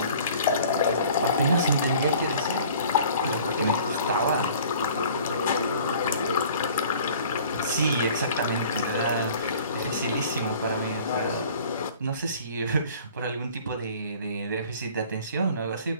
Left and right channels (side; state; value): both; inverted; correlation -0.49